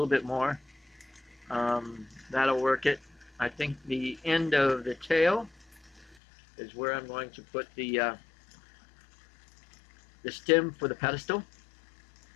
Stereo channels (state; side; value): drops out; right; at 6.2 s